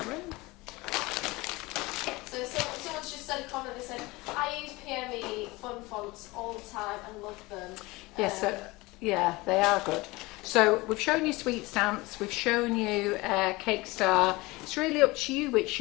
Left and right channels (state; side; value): quieter; right; 22.2 dB